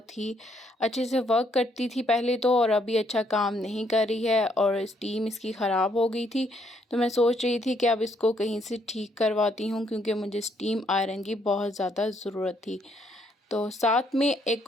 ही अच्छे से वर्क करती थी पहले तो, और अभी अच्छा काम नहीं कर रही है और स्टीम इसकी ख़राब हो गई थी। तो मैं सोच रही थी कि अब इसको कहीं से ठीक करवाती हूँ, क्योंकि मुझे स्टीम आयरन की बहुत ज़्यादा ज़रूरत थी। तो साथ में एक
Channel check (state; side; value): normal; both; correlation 0.71